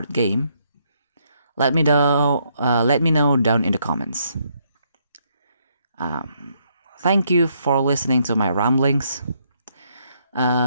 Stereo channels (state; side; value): inverted; both; correlation -0.73